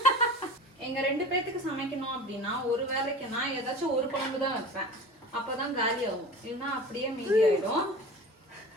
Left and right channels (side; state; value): both; normal; correlation 0.36